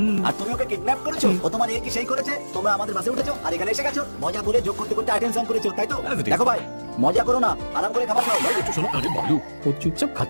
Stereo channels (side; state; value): both; inverted; correlation -1.00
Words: আর তুমি ওকে কিডন্যাপ করেছো। ও তোমার এই কি সেই করেছে? তোমরা আমাদের বাসে উঠেছো আর এখানে এসে গেছো। মজা করে যোগ করতে করতে আইটেম সং করেছো, তাই তো? As it is. দেখো ভাই, মজা করো না, আরাম করে খাবার খাও। ভাই একটু শোনো। আরে বালু, ও চুপচাপ